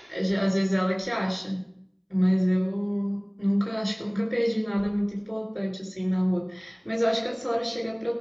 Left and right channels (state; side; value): identical; both; correlation 1.00